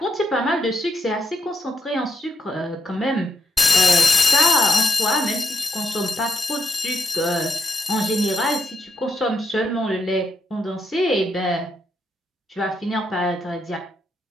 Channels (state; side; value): normal; both; correlation 0.81